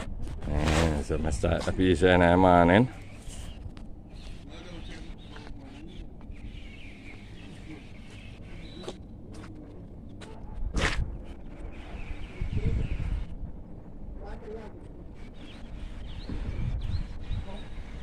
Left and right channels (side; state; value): both; identical; correlation 1.00